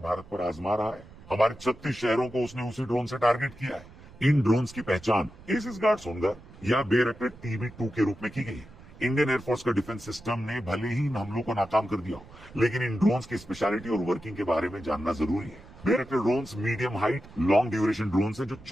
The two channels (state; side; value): noise; right; rumble, 20 dB below the sound